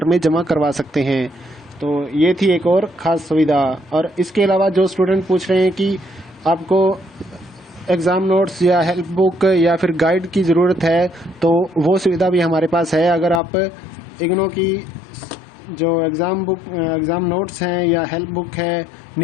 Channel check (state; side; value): drops out; right; at 13.4 s